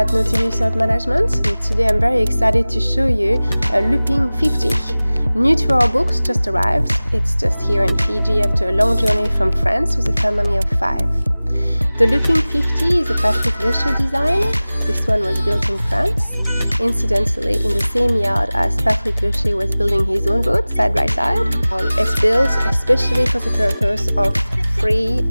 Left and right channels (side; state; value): both; inverted; correlation -0.99